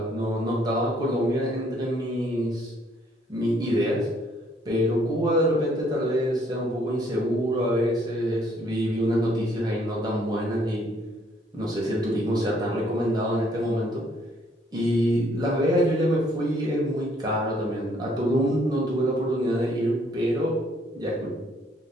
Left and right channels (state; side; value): normal; both; correlation 0.65